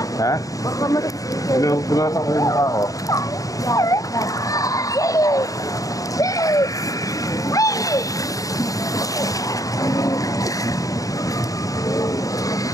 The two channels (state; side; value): late; right; 0.17 ms